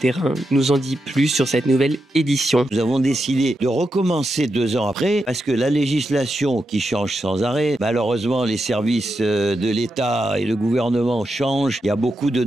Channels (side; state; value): both; normal; correlation 0.86